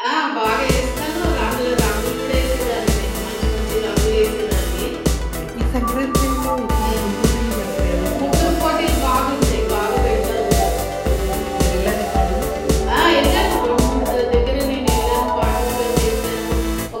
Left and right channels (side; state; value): both; identical; correlation 1.00